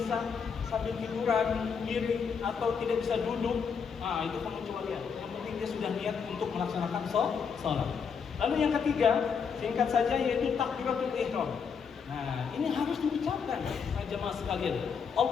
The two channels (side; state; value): right; quieter; 6.4 dB